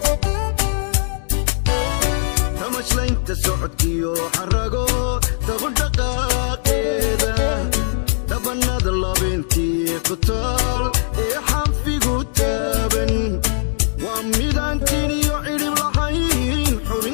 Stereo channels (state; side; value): silent; right; digital silence